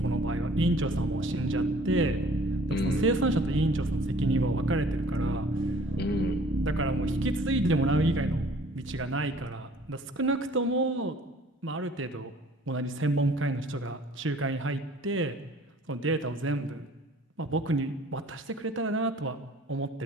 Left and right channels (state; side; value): normal; both; correlation 0.53